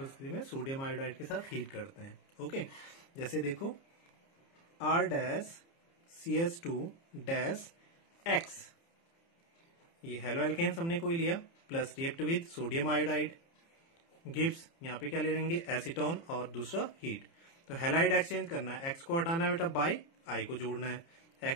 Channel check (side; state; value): right; late; 30 ms